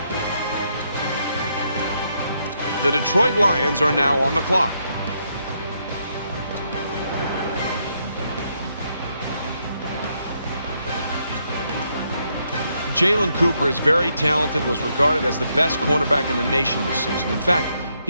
The Detroit Lions are now on the clock. Jalen Cooper is very talented, was regarded as the best cornerback in the nation this season. In fact,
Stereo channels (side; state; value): both; inverted; correlation -0.77